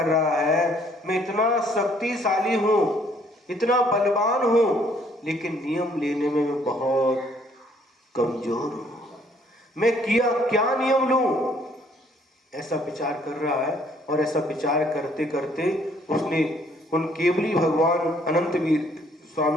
रहा है, मैं इतना शक्तिशाली हूं, इतना बलवान हूं, लेकिन नियम लेने में मैं बहुत कमजोर हूं। मैं क्या नियम लूं? ऐसा विचार कर रहा है। और ऐसा विचार करते करते उसने उन केवली भगवान अनंत वीर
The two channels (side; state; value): both; normal; correlation 0.64